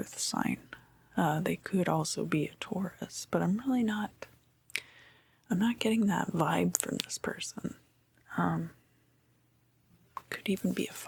sign. They could also be a Taurus, but I'm not getting that vibe from this person. Could even be a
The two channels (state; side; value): identical; both; correlation 1.00